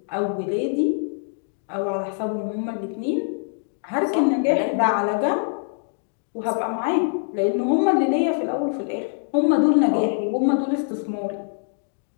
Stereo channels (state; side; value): silent; right; digital silence